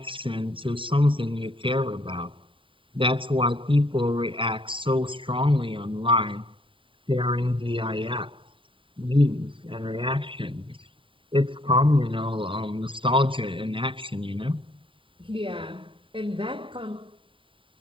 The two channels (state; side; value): late; left; 0.25 ms